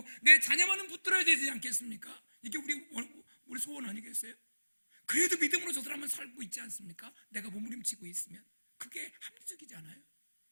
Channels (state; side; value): inverted; both; correlation -1.00